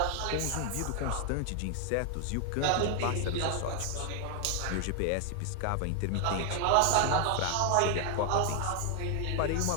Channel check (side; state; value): both; different; correlation 0.00